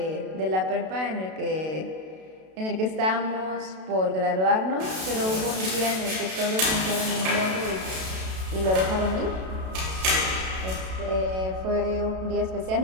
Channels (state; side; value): late; left; 32 ms